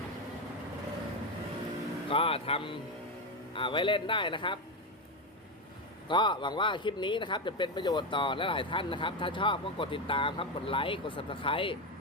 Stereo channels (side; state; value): both; normal; correlation 0.12